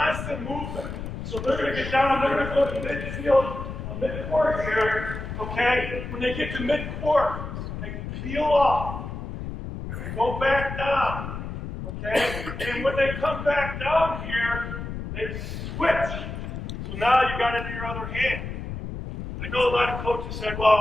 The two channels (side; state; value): left; noise; rumble, 7 dB below the sound